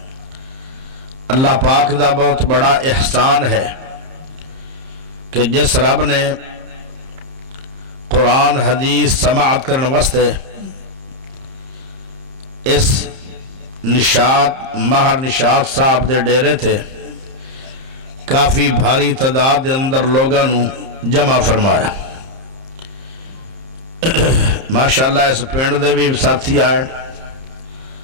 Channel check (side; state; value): left; late; 30 ms